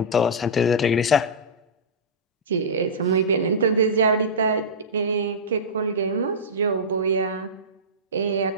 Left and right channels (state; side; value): normal; both; correlation -0.14